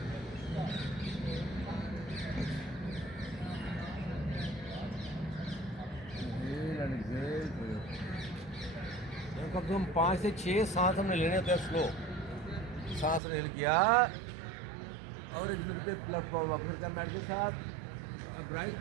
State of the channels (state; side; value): drops out; left; at 13.2 s